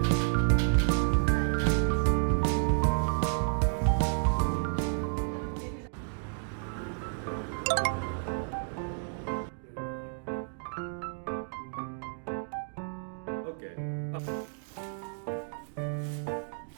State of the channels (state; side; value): silent; left; 57 dB below the other